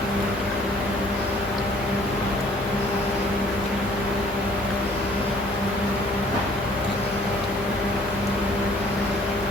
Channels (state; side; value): normal; both; correlation 0.57